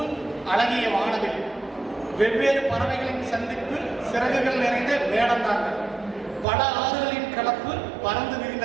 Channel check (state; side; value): drops out; left; at 6.5 s